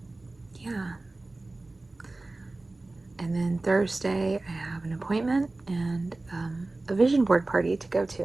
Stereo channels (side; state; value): left; quieter; 3.1 dB